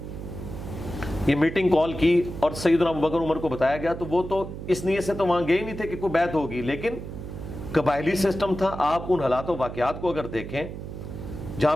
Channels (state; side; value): noise; right; hum, 9 dB below the sound